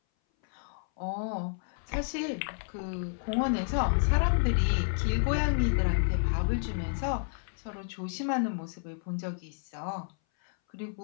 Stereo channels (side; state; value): right; silent; 57 dB below the other